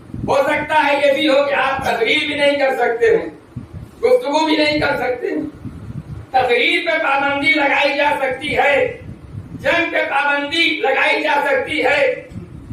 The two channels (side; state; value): both; identical; correlation 1.00